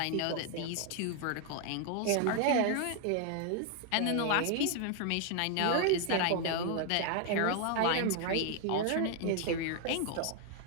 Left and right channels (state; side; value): different; both; correlation 0.01